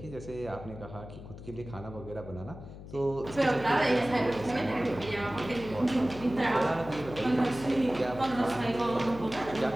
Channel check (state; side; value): noise; left; hum, 13 dB below the sound